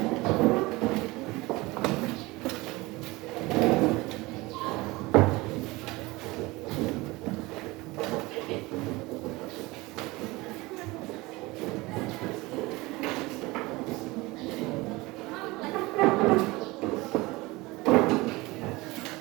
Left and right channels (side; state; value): left; quieter; 21.9 dB